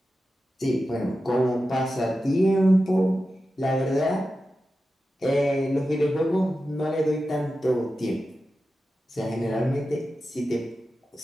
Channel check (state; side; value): normal; both; correlation 0.92